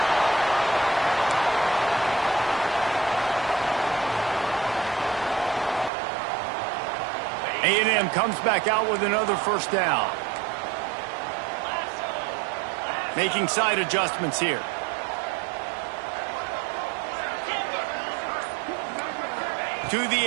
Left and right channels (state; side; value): drops out; left; at 5.9 s